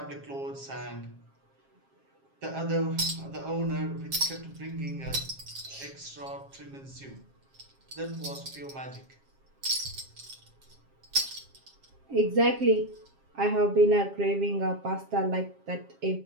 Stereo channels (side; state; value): left; late; 7.4 ms